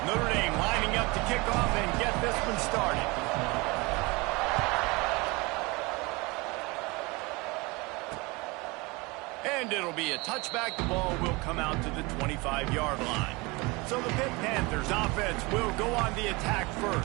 Notre Dame lining up to kick off and get this one started. And it'll be a touchback. The ball will come out to the 25-yard line. So the Pitt Panthers offense will go on the attack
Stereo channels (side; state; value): left; quieter; 25.3 dB